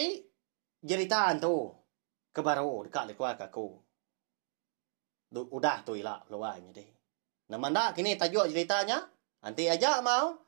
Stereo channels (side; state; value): left; silent; digital silence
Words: jeritaan tu kebaru dekat keluarga aku. Udah tu ilah lawannya deh. Nama ndak kini tajuk ceritanya. Nanti aja mau.